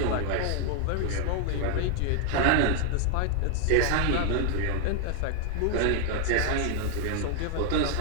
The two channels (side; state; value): both; different; correlation 0.00